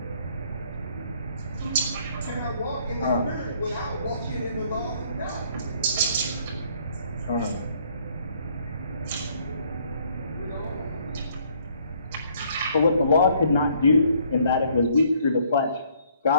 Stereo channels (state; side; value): inverted; both; correlation -0.64